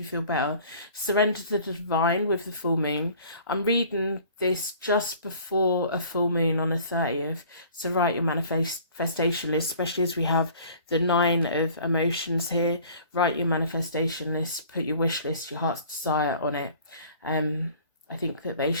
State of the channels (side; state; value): both; inverted; correlation -0.50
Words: feel better. Surrender to the divine with the full moon. I'm reading this just before a full moon on the 30th. So write your manifestation list, especially as we have the 9 of emotions here. Write your manifestation list, put your wish list, your heart's desire on it. I think that they